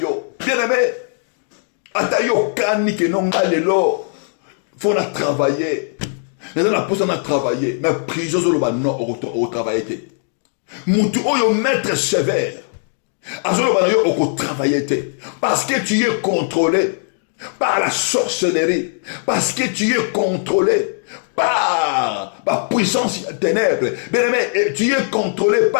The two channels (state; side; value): silent; right; digital silence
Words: Bien aimé. Ata yo kani ke non alelo. Faut na travailler. Mais on a posé à travailler. Mais prison sur le bas non au travail. Moutou oyo maître sévère. Azolo bas yo au travailler. Parce que tu es contrôlé par la sorcellerie. Parce que tu es contrôlé par la puissance ténèbres. Bien aimé, tu es contrôlé